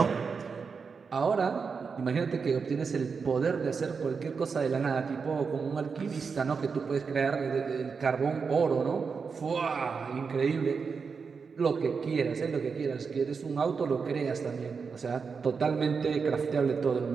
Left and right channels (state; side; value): quieter; left; 5.4 dB